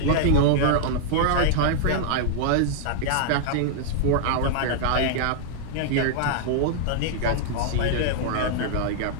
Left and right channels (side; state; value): both; different; correlation -0.01